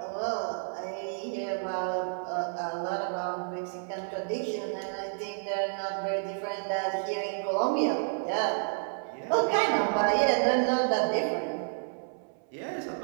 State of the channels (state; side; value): silent; left; 58 dB below the other